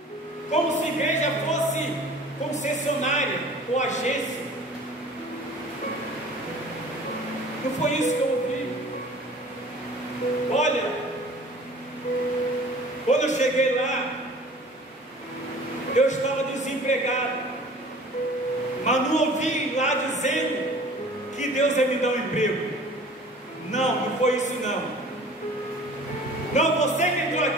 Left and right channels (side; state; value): both; normal; correlation 0.46